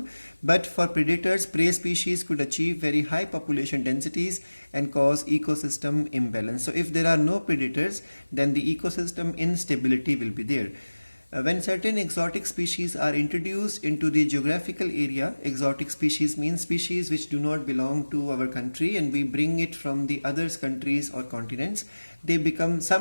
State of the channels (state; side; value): inverted; both; correlation -1.00